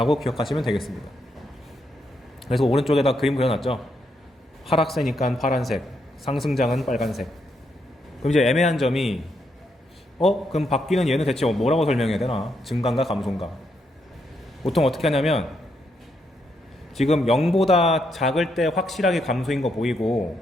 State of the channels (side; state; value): both; normal; correlation 0.79